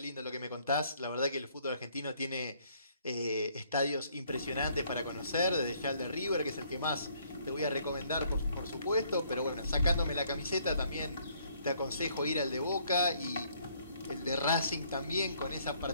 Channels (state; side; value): inverted; both; correlation -0.65